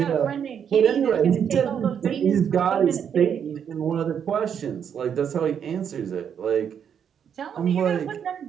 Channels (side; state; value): left; quieter; 8.0 dB